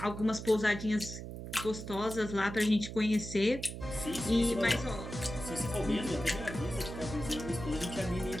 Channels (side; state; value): right; noise; hum, 9 dB below the sound